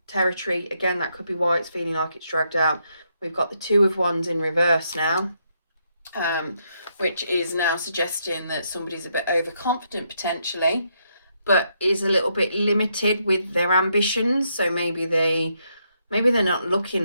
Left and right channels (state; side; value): inverted; both; correlation -0.77